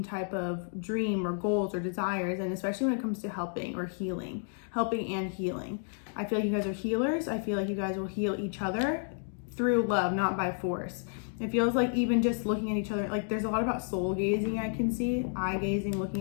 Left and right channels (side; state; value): right; silent; 57 dB below the other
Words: type of dream or goals or desires. And especially when it comes to helping or healing, helping and healing. I feel like you guys are healers. I feel like you guys will heal each other through love, not by force. It feels like even just looking at each other, like there's a lot about soul gazing I can see, eye gazing,